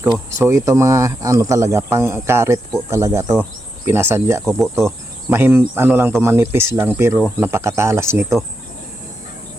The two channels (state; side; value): normal; both; correlation 0.85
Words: So ito mga ano talaga, pang karet po talaga to. Pinasadya ko po to. Lang to, manipis lang pero napakatalas nito.